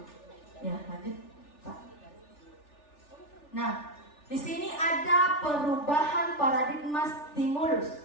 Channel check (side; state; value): right; late; 3.4 ms